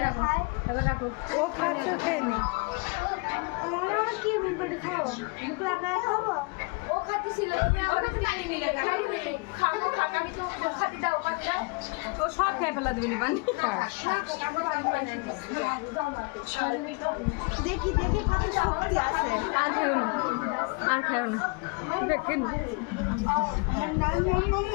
রাখো ও খাচ্ছে খেয়ে নি। মামা কি মন করে খাও? মুখ লাগায় খাবো? ও খাচ্ছিল তুমি আমার কাছে পানি নিলে খাবো খাক আমি তো খাতে দাও খাতে দাও। ও সব খেয়ে ফেলা দেবে পানি। দেখি দেখি কত শক্তি আছে। আর খেও না, আর খেও না। দেখেন আমার নাম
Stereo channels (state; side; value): quieter; right; 30.2 dB